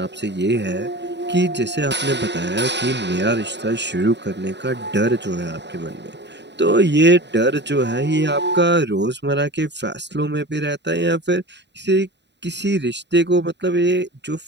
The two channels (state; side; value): late; left; 0.51 ms